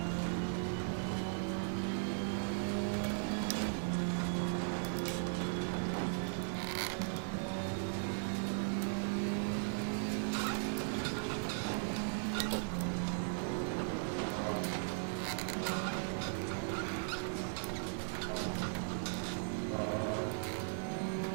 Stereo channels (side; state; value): left; silent; digital silence